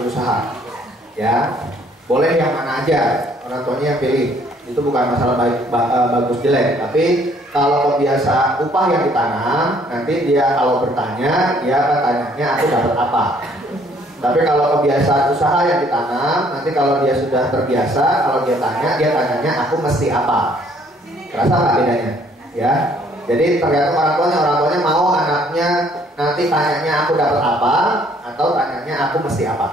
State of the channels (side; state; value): both; normal; correlation 0.62